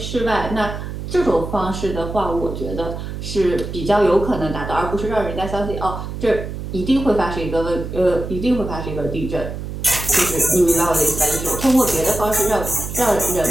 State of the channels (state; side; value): noise; right; hum, 7 dB below the sound